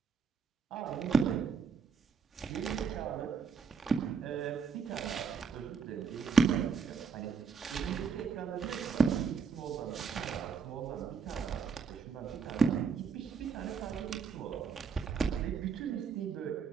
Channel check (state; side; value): quieter; left; 5.7 dB